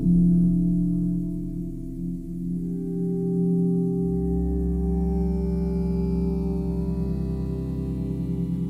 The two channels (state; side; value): identical; both; correlation 1.00